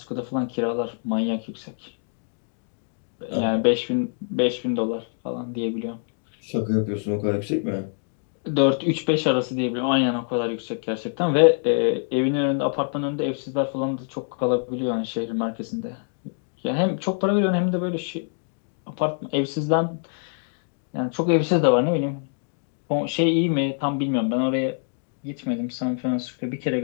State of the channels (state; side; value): silent; right; 62 dB below the other